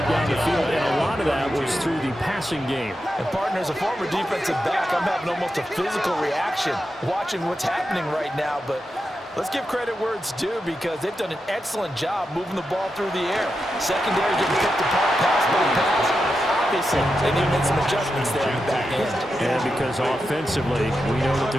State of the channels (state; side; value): normal; both; correlation 0.88